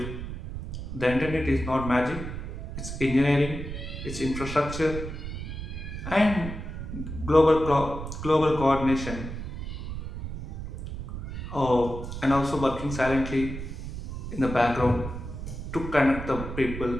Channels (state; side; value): noise; right; rumble, 7 dB below the sound